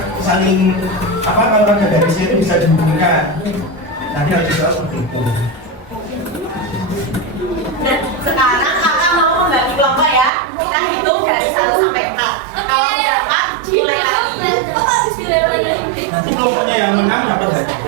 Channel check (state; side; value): drops out; left; at 10.3 s